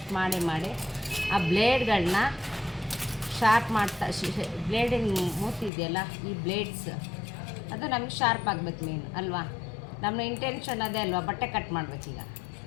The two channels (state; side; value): drops out; right; at 5.7 s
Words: ಮಾಡಿ ಆ ಬ್ಲೇಡ್ಗಳನ್ನ ಶಾರ್ಪ್ ಮಾಡ್ತಾ, ಬ್ಲೇಡಿನ ಮೂತಿದೆಯಲ್ಲ, ಈ ಬ್ಲೇಡ್ಸ್ ಅದು ನಮಗೆ ಶಾರ್ಪ್ ಆಗಬೇಕು ಮೇನ್ ಅಲ್ವಾ? ನಮ್ಮ ಇಂಟೆನ್ಷನ್ ಅದೇ ಅಲ್ವಾ, ಬಟ್ಟೆ ಕಟ್ ಮಾಡಬೇಕೀಗ.